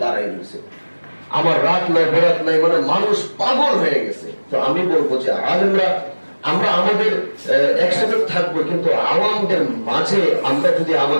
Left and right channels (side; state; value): both; inverted; correlation -1.00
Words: দাঁড়ায় রয়েছে। আমার রাত নাই বেরাত নাই, মানে মানুষ পাগল হয়ে গেছে। তো আমি বলবো যে আলেমরা আমরা আমাদের একসাথে থাকবো, কিন্তু আওয়ামদের মাঝে আমরা যদি